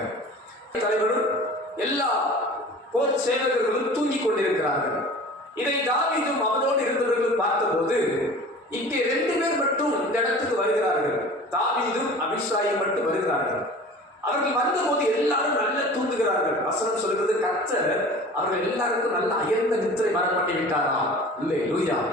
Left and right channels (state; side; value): normal; both; correlation 0.41